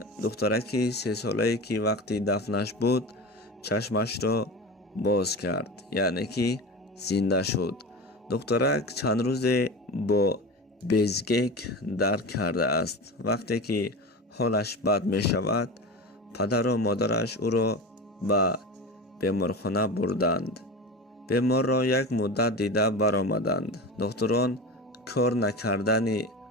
духтараки 3 солае ки вақти дафнаш буд чашмашро боз кард, яъне ки зинда шуд. духтарак чанд рӯзе бо безгек дарк кардааст. вақте ки ҳолаш бад мешавад, падару модараш ӯро ба беморхона бурданд. беморро як муддат дида баромаданд. духтурон кор накардани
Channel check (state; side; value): normal; both; correlation 0.28